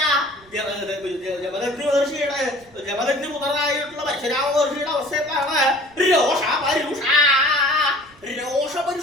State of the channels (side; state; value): right; noise; rumble, 28 dB below the sound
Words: ജമദഗ്നി പുത്രനായിട്ടുള്ള പരശുരാമ മഹർഷിയുടെ അവസ്ഥ എന്താണ്?